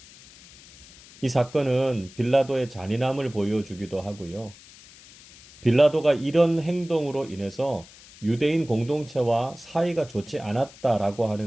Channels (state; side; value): noise; left; hiss, 22 dB below the sound